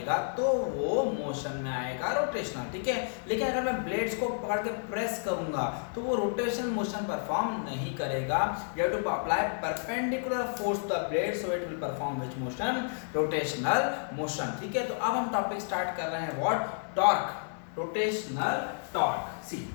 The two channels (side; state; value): right; silent; digital silence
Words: तो वो मोशन में आएगा रोटेशनल। ठीक है, लेकिन अगर मैं ब्लेड्स को पकड़ के प्रेस करूंगा तो वो रोटेशनल मोशन परफॉर्म नहीं करेगा। You have to apply perpendicular force to the blade so it will perform which motion? Rotational motion. ठीक है, तो अब हम टॉपिक स्टार्ट कर रहे हैं what? Torque, rotational torque. See